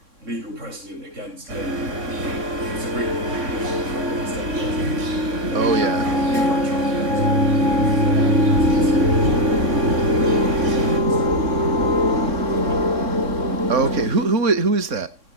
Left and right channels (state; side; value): late; left; 3.6 ms